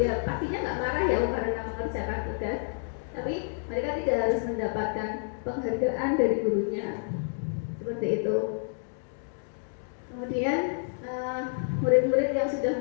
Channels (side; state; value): right; silent; digital silence